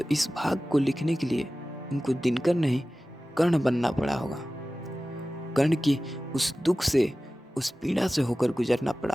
इस भाग को लिखने के लिए उनको दिनकर नहीं, कर्ण बनना पड़ा होगा। कर्ण की उस दुख से, उस पीड़ा से होकर गुजरना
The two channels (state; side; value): normal; both; correlation 0.96